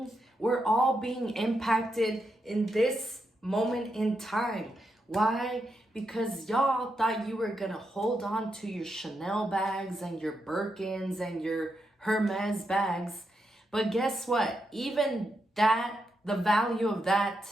We're all being impacted in this moment in time. Why? Because y'all thought you were gonna hold on to your Chanel bags and your Birkins and your Hermes bags. But guess what? Even that, the value of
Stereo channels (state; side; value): normal; both; correlation 0.83